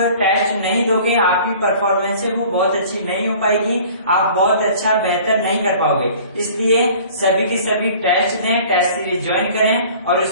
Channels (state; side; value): inverted; both; correlation -0.48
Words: टेस्ट नहीं दोगे आपकी परफॉर्मेंस है वो बहुत अच्छी नहीं हो पाएगी, आप बहुत अच्छा बेहतर नहीं कर पाओगे। इसलिए सभी के सभी टेस्ट दें, टेस्ट सीरीज ज्वाइन करें और